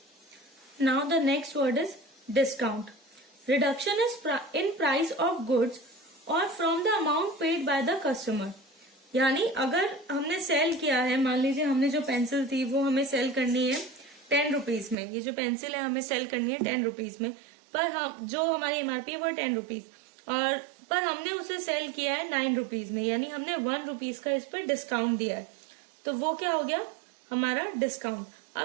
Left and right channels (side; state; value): left; drops out; at 15.0 s